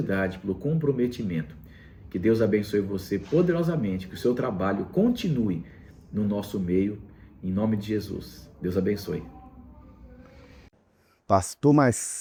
pelo comprometimento. Que Deus abençoe você poderosamente, que o seu trabalho continue no nosso meio, em nome de Jesus. Deus abençoe. Pastor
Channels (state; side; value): identical; both; correlation 1.00